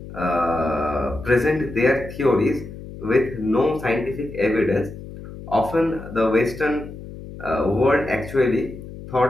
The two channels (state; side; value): noise; left; hum, 13 dB below the sound